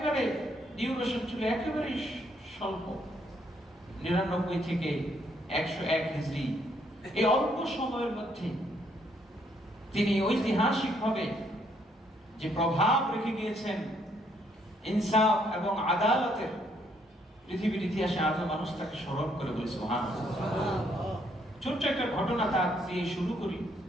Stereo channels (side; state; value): both; normal; correlation 0.70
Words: ডিউরেশন ছিল একেবারে স্বল্প, 99 থেকে 101 হিজরি। এই অল্প সময়ের মধ্যে তিনি ঐতিহাসিকভাবে যে প্রভাব রেখে গিয়েছেন ইনসাফ এবং আদালতের, পৃথিবীর ইতিহাসে আজও মানুষ তাকে স্মরণ করে বলে। সুবহানাল্লাহ। ছোট্ট একটা ঘটনা তার দিয়ে শুরু করি,